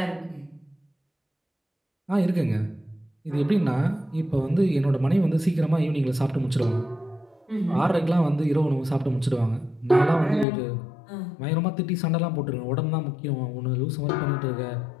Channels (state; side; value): drops out; right; at 10.5 s